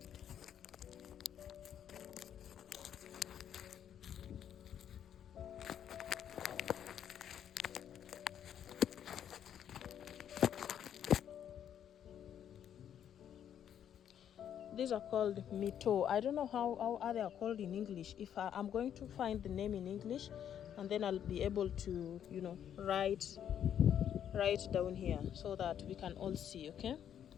These are called mito. I don't know how they are called in English. If I'm going to find the name in English, and then I'll be able to, write down here so that we can all see, okay?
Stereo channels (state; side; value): quieter; right; 9.5 dB